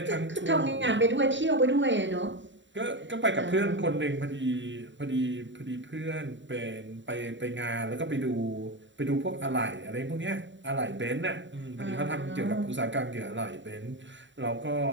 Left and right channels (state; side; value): late; left; 0.54 ms